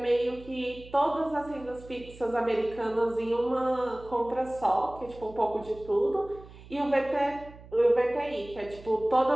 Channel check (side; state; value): right; noise; hum, 19 dB below the sound